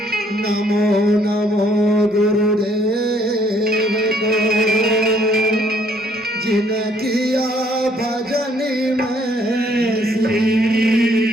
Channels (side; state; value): both; normal; correlation 0.65